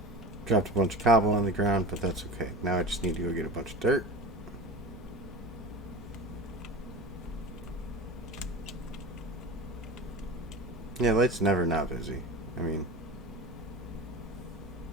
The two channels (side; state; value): both; normal; correlation 0.30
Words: Dropped a bunch of cobble on the ground, but that's okay. Now I just need to go get a bunch of dirt. Yeah, light's never not busy. I mean,